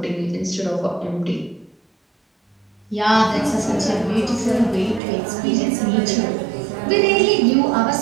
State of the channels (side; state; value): left; drops out; at 5.0 s